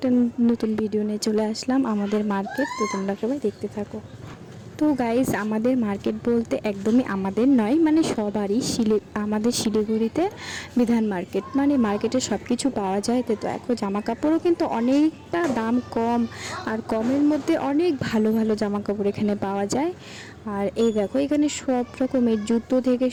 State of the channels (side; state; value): both; identical; correlation 1.00